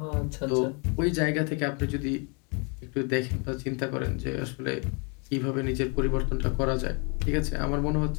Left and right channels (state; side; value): quieter; right; 34.5 dB